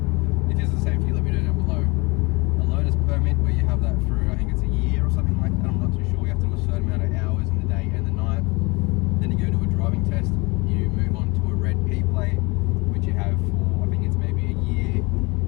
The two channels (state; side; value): quieter; right; 26.1 dB